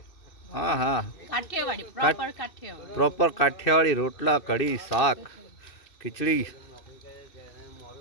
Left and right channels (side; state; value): right; late; 2.6 ms